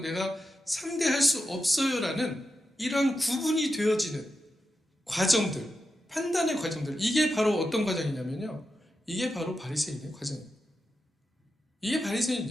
내가 상대할 수 없어요 라는 이런 구분이 되어지는 과정들, 판단의 과정들, 이게 바로 어떤 과정이냐면요, 이게 바로 바리새인의 과정이에요. 이게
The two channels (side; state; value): both; normal; correlation 0.89